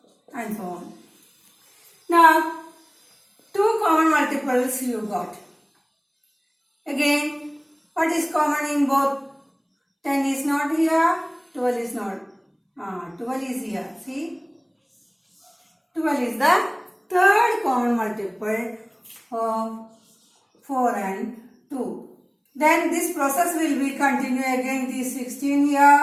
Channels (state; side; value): identical; both; correlation 1.00